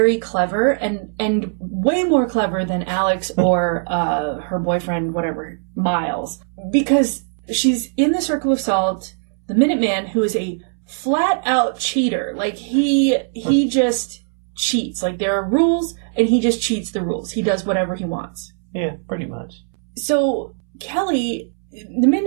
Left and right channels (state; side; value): silent; left; 66 dB below the other